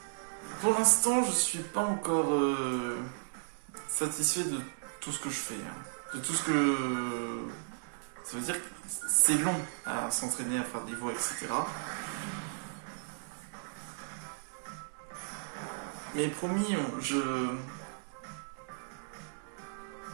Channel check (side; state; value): left; silent; digital silence